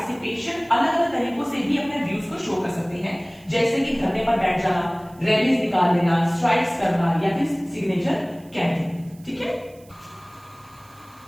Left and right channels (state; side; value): noise; right; hiss, 28 dB below the sound